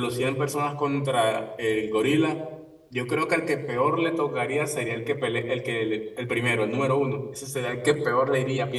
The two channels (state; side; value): identical; both; correlation 1.00